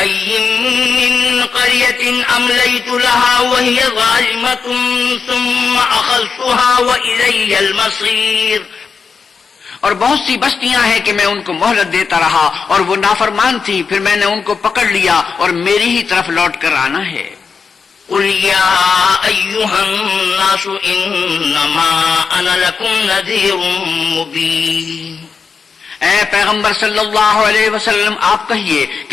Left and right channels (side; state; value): right; quieter; 5.5 dB